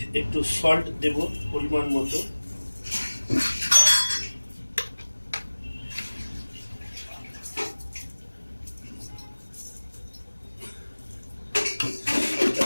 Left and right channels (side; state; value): both; inverted; correlation -1.00